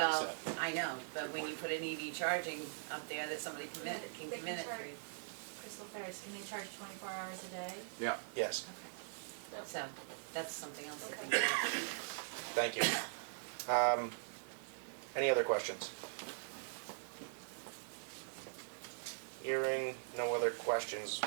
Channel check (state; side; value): silent; left; digital silence